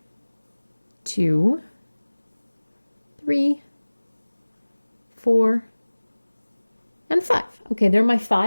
2, 3, 4, and 5. Okay, they're my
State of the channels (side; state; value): both; inverted; correlation -1.00